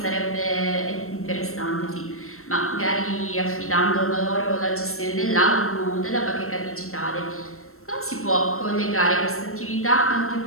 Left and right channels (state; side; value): late; right; 0.63 ms